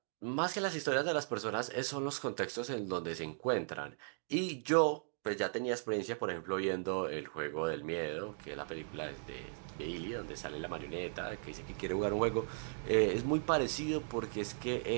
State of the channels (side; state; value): left; silent; digital silence